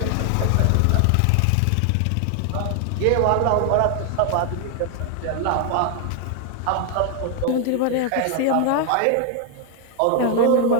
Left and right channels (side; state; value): both; different; correlation 0.00